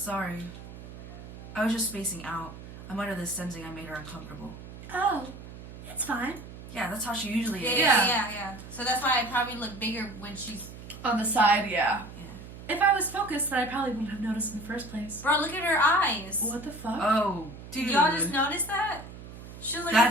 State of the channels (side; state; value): right; noise; hum, 14 dB below the sound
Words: I was just spacing out. I'm under this sensing I made her uncomfortable. Oh, it's fine. Yeah, that's how she usually is. Yeah. So that's why I probably look bigger when she's... On the side, yeah. Yeah. If I was focused, then I probably wouldn't have noticed in the first place. Bro, look at her eyes. What the fuck? Oh, dude. Did y'all just notice that? She was like